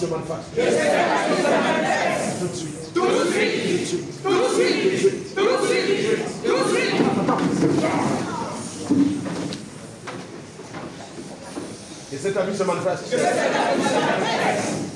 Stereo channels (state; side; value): identical; both; correlation 1.00